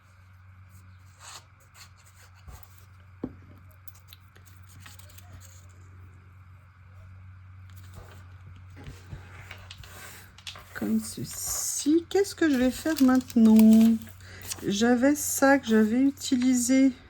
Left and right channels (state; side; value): identical; both; correlation 1.00